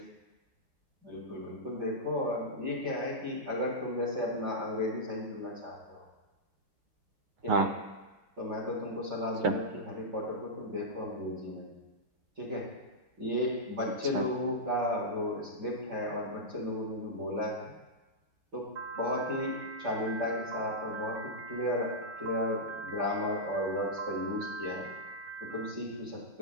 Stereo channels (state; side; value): late; left; 8.8 ms